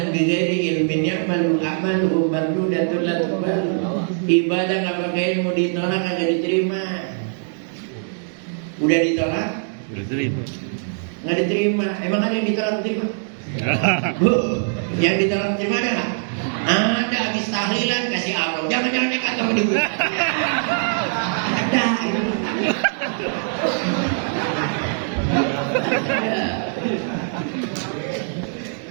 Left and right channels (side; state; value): left; silent; digital silence